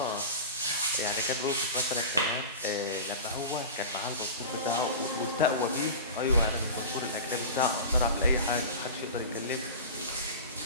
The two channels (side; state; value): both; inverted; correlation -0.31